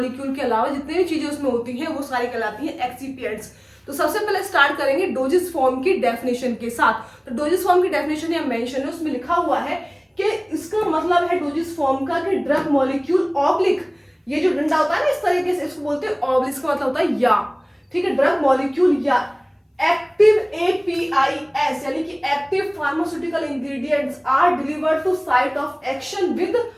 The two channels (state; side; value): identical; both; correlation 1.00